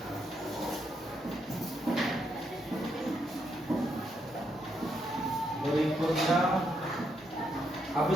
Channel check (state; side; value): normal; both; correlation 0.78